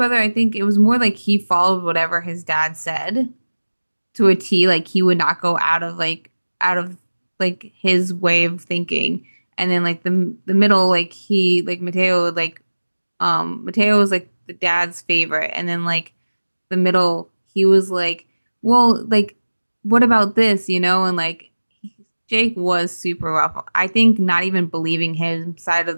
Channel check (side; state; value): both; inverted; correlation -1.00